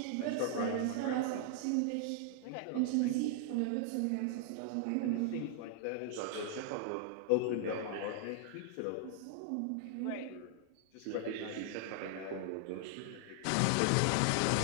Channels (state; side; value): different; both; correlation 0.00